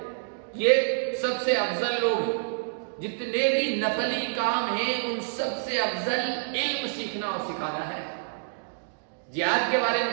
یہ سب سے افضل لوگ ہیں، جتنے بھی نفلی کام ہیں ان سب سے افضل علم سیکھنا اور سکھانا ہے۔ جہاد کے بارے میں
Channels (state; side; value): silent; left; digital silence